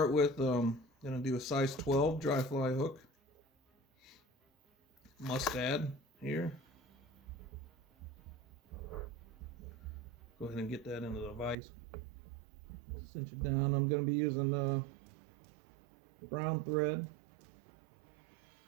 with gonna do a size 12 dry fly hook, mustad here. Go ahead and get that into the vise. Cinch it down. I'm gonna be using brown thread.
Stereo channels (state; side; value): drops out; left; at 11.6 s